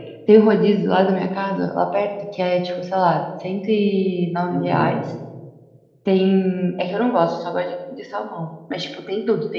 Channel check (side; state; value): both; identical; correlation 1.00